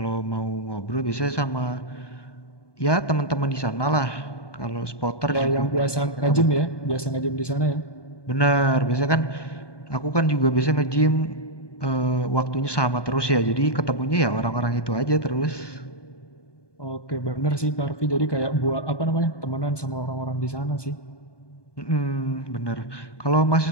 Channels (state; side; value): late; right; 1.2 ms